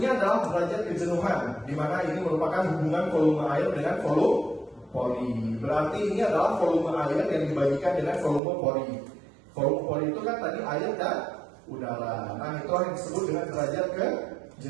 adalah derajat kejenuhan, di mana ini merupakan hubungan volume air dengan volume pori. Berarti ini adalah volume air yang dibagikan dengan volume pori. Volume pori itu kan tadi air dan udara. Nah, itu yang disebut dengan derajat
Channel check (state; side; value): drops out; left; at 8.4 s